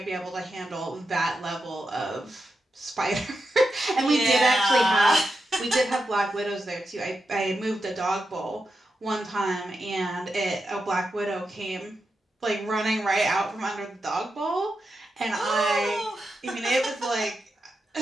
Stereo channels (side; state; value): both; normal; correlation 0.88